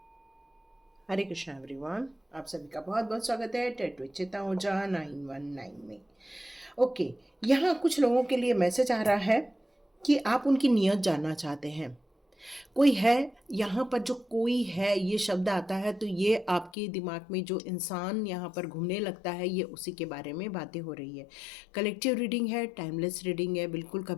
हरे कृष्णा एवरीवन, आप सभी का बहुत बहुत स्वागत है डायरेक्ट विचेतना ऊर्जा 919 में। ओके, यहाँ कुछ लोगों के लिए मैसेज आ रहा है कि आप उनकी नीयत जानना चाहते हैं। कोई है, यहाँ पर जो कोई है ये शब्द आता है तो ये आपके दिमाग में जो इंसान यहाँ पर घूमने लगता है ये उसी के बारे में बातें हो रही है। कलेक्टिव रीडिंग है, टाइमलेस रीडिंग है, बिल्कुल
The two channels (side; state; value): right; drops out; at 16.7 s